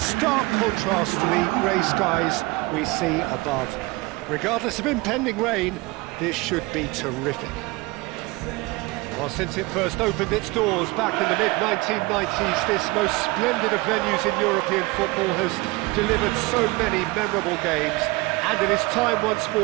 contrast to the grey skies we see above. Regardless of impending rain, this should be terrific. Well, since it first opened its doors back in the mid-1990s, this most splendid of venues in European football has delivered so many memorable games, and it is time once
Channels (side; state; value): left; quieter; 23.2 dB